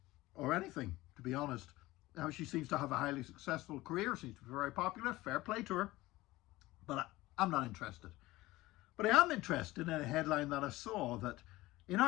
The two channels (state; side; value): quieter; right; 18.5 dB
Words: anything, to be honest. Now, she seems to have a highly successful career, seems to be very popular, fair play to her, but I'm not interested. But I am interested in a headline that I saw that in